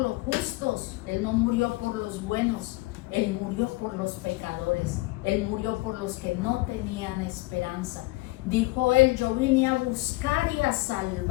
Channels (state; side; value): quieter; right; 21.8 dB